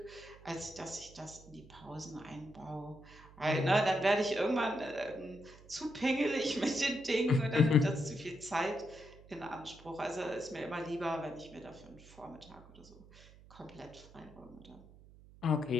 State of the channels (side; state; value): right; noise; hum, 21 dB below the sound